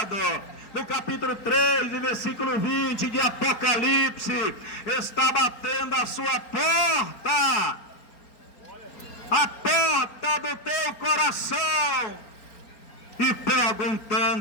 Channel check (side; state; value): right; late; 4.4 ms